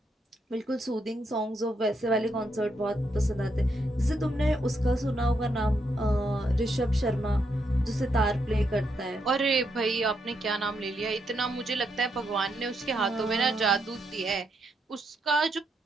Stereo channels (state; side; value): normal; both; correlation 0.79